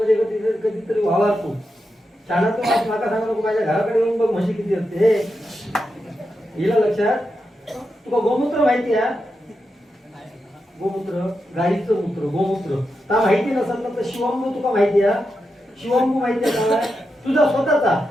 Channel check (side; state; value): both; normal; correlation 0.87